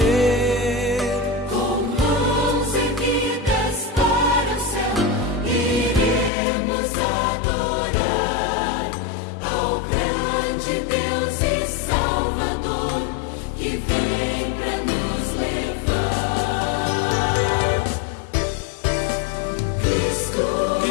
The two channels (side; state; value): right; drops out; at 6.3 s